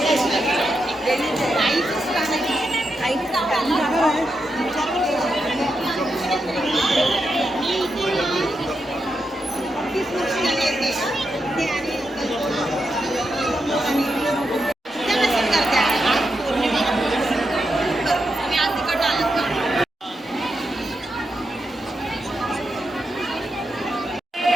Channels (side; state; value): both; normal; correlation 0.85